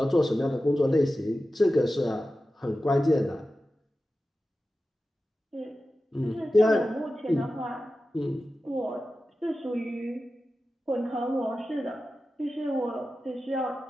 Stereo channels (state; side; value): normal; both; correlation 0.93